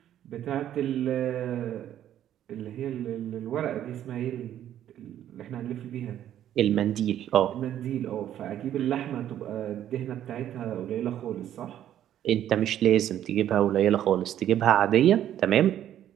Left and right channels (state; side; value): quieter; left; 11.2 dB